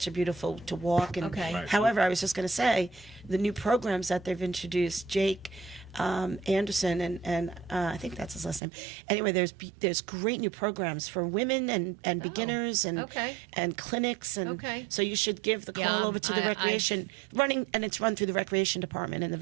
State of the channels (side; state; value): left; drops out; at 8.6 s